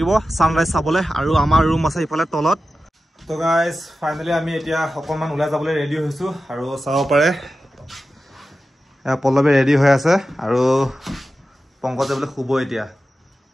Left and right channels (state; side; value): normal; both; correlation 0.93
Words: ছানৰাইজ চাবলৈ আৰু আমাৰ ৰুম আছে ইফালে তলত। তো গাইজ ফাইনেলি আমি এতিয়া অকণমান ওলাই যাবলৈ ৰেডি হৈছোঁ আৰু চাব পাৰে পল্লৱী ৰেডি হৈ আছে আৰু পংকজ যাবলৈ শুব এতিয়া।